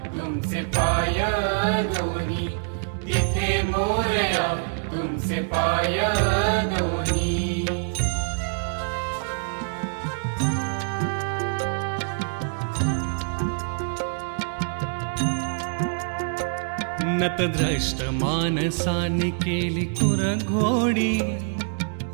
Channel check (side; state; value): left; silent; 62 dB below the other